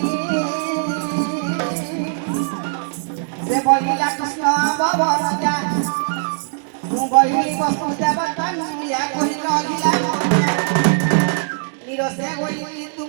से बोलिया कृष्ण भवन जा বহিলি বস্তু দেবতানু ইয়া কহিল অগিলা নিরসে গইলি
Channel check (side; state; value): left; silent; digital silence